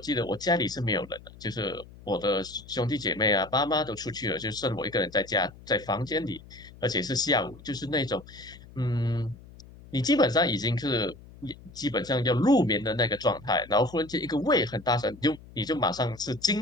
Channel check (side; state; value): left; noise; hum, 20 dB below the sound